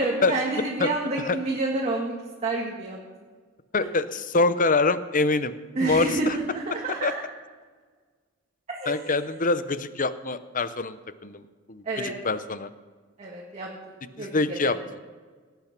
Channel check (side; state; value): both; normal; correlation 0.06